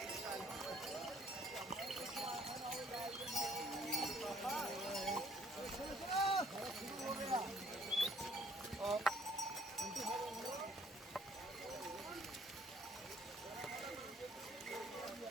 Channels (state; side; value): normal; both; correlation 0.61